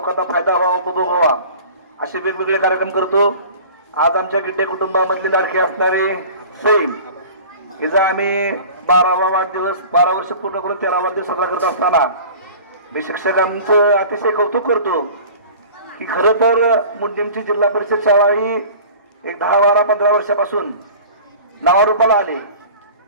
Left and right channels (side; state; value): both; inverted; correlation -0.41